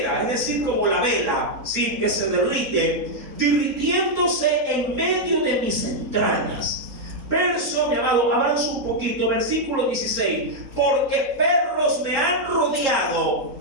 es decir, como la vela, ¿sí?, que se derrite, derritiéndose en medio de mis entrañas. Verso, mi amado, avanza un poquito, versículo 16, porque perros me han rodeado,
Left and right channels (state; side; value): late; left; 4.3 ms